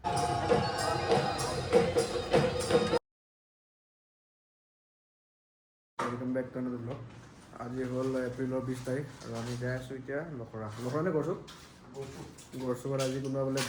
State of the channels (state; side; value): identical; both; correlation 1.00